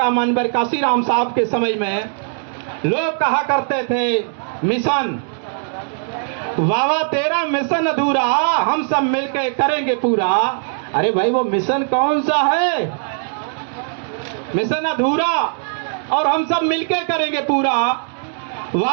माननीय कांसीराम साहब के समय में लोग कहा करते थे मिशन, बाबा तेरा मिशन अधूरा, हम सब मिलकर करेंगे पूरा। अरे भाई वो मिशन कौन सा है? मिशन अधूरा और हम सब मिलके करेंगे पूरा।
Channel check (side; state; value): left; silent; digital silence